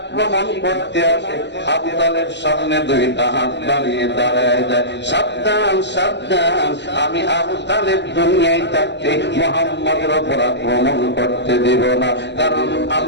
করতে আসে, আবু তালেব সামনে দুইটা হাত বাড়িয়ে দাঁড়ায় যায়, সাবধান সাবধান, আমি আবু তালেব দুনিয়ায় থাকতে মুহাম্মদের উপর আক্রমণ করতে দিব না, কারণ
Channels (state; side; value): late; right; 0.51 ms